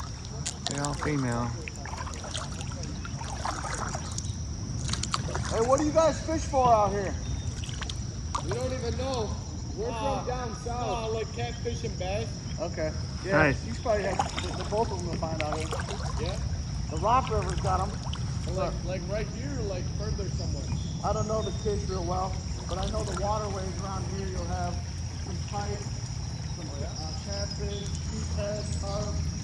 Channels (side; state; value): both; identical; correlation 1.00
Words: They're all female. Hey, what do you guys fish for out here? We don't even know. We're from down south. Like catfish and bass. Okay. Yeah, Nice. you probably have both of them to find out here. Yeah. The Rock River's got them. Like right here, or like further somewhere. I don't know the fish real well, but I know the waterways around here. You'll have some pike, some catfish, sheephead, carp,